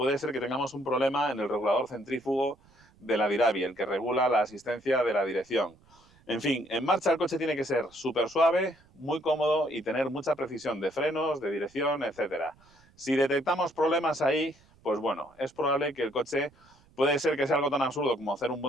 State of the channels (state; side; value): noise; right; rumble, 29 dB below the sound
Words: ser que tengamos un problema en el regulador centrífugo de la Diravi, el que regula la asistencia de la dirección. En fin, en marcha el coche tiene que ser súper suave, muy cómodo y tener mucha precisión de frenos, de dirección, etc. Si detectamos problemas ahí, pues bueno, es probable que el coche puede ser que sea algo tan absurdo como hacer un